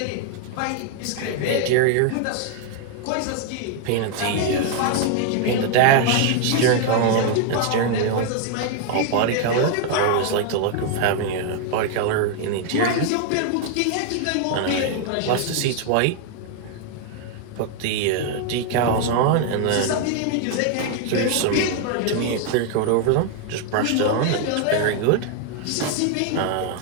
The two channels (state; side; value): different; both; correlation 0.00